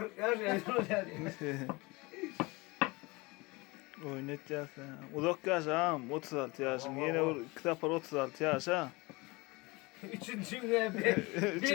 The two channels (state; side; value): quieter; right; 24.5 dB